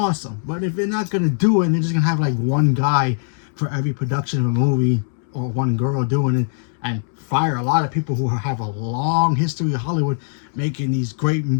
But if they're not gonna do it and they're just gonna have like one guy for every production of a movie or one girl doing it and fire a lot of people who have a long history of Hollywood making these great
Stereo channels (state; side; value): silent; right; 64 dB below the other